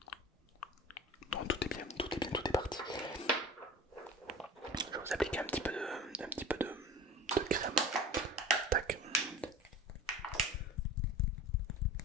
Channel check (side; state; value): both; normal; correlation 0.39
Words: Non, tout est bien, tout est bien, tout est parti. Je vais vous appliquer un petit peu de crème. Tac.